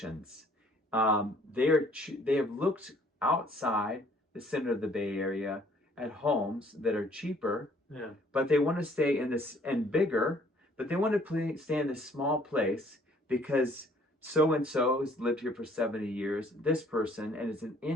They have looked outside the center of the Bay Area at homes that are cheaper, Yeah. but they want to stay in this and bigger, but they want to stay in this small place because so and so has lived here for 70 years, this person, and it's an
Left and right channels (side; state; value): both; normal; correlation 0.60